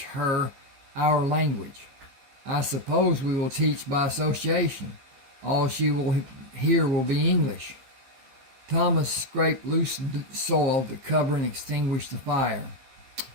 her our language? I suppose we will teach by association. All she will hear will be English. Thomas scraped loose soil to cover and extinguish the fire.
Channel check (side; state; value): left; late; 15 ms